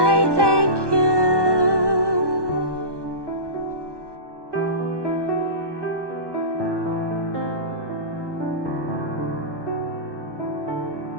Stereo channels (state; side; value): late; left; 1.2 ms